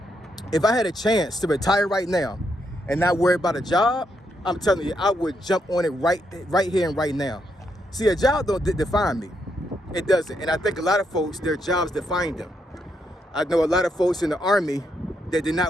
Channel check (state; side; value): normal; both; correlation 0.79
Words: if I had a chance to retire right now and not worry about a job, I'm telling you, I would jump on it right here and right now. See, a job don't define me. It doesn't. And I think a lot of folks, their jobs define them. I know a lot of folks in the Army that did